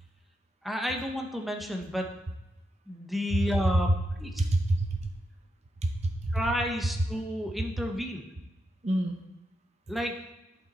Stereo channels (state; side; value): normal; both; correlation 0.85